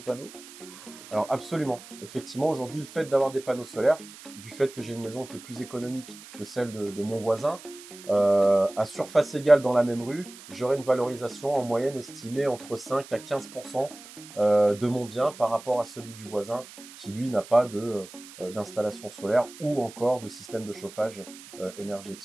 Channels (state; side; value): noise; right; hiss, 17 dB below the sound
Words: panneaux? Alors absolument. Effectivement, aujourd'hui, le fait d'avoir des panneaux solaires, du fait que j'ai une maison qui est plus économique que celle de mon voisin, à surface égale dans la même rue, j'aurai une valorisation en moyenne estimée entre 5 à 15% de mon bien par rapport à celui du voisin qui lui n'a pas d'installation solaire ou encore de système de chauffage